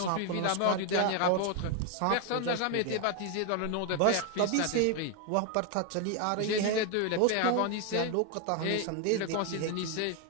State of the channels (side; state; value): both; different; correlation 0.01